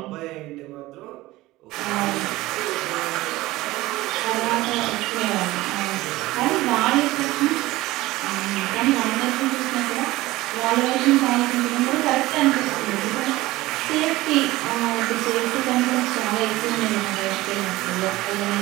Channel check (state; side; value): quieter; left; 18.4 dB